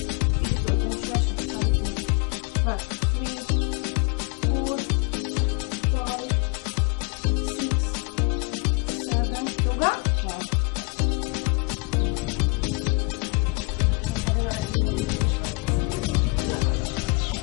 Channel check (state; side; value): quieter; right; 30.0 dB